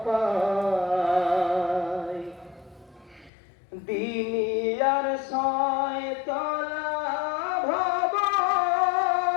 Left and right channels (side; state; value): right; drops out; at 3.3 s